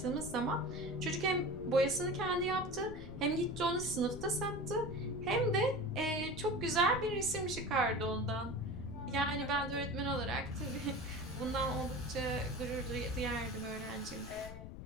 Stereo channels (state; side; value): noise; left; rumble, 11 dB below the sound